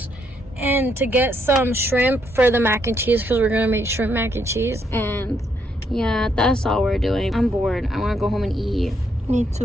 and to get some shrimp for the mac and cheese because we're gonna make shrimp mac and cheese. And yeah, that's all we're doing. I'm bored. I want to go home and eat. Me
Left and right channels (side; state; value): both; normal; correlation 0.74